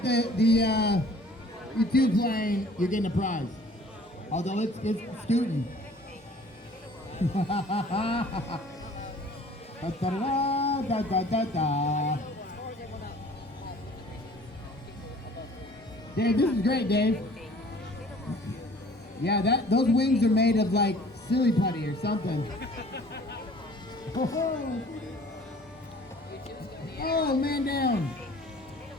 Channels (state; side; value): normal; both; correlation 0.51